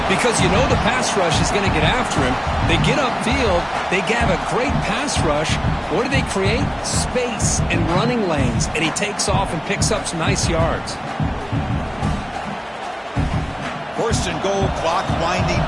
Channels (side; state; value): both; identical; correlation 1.00